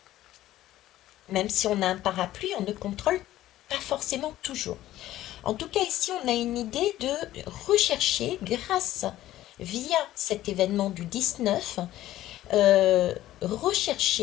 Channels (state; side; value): quieter; right; 14.3 dB